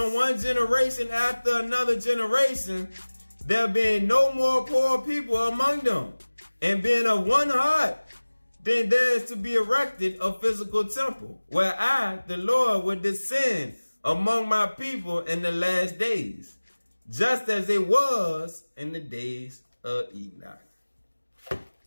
one generation after another generation, there being no more poor people among them, and being of one heart, then there is to be erected a physical temple, where I, the Lord, will descend among my people in the last days, just as it was in the days of Enoch.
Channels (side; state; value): both; inverted; correlation -1.00